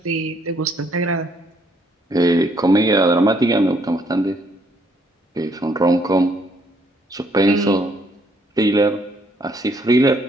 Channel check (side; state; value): both; normal; correlation 0.68